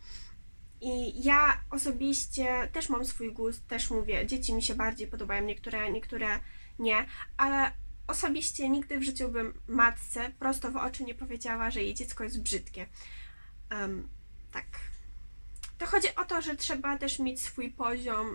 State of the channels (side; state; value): both; inverted; correlation -1.00